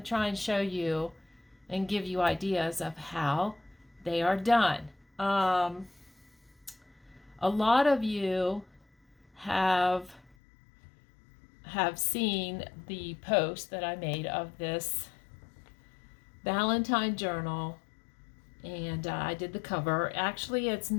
try and show you and give you ideas of how they are done. A lot of you have seen the post that I made of this Valentine journal, and I did the cover. Actually, it's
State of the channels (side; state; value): right; drops out; at 10.4 s